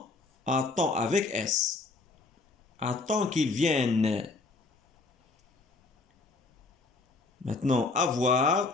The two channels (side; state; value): right; quieter; 3.7 dB